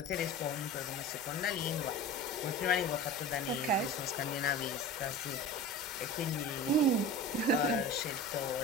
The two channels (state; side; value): normal; both; correlation 0.33